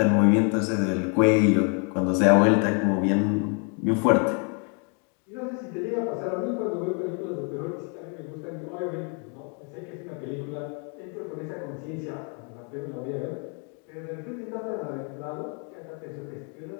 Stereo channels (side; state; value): right; quieter; 38.3 dB